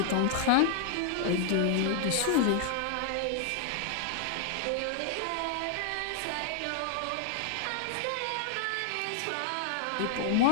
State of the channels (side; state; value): both; different; correlation 0.00